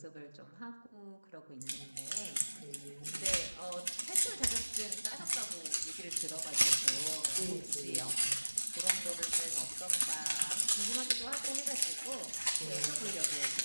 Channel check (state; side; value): inverted; both; correlation -1.00